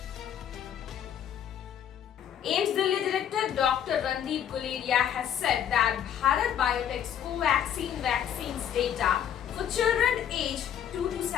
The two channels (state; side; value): quieter; right; 9.5 dB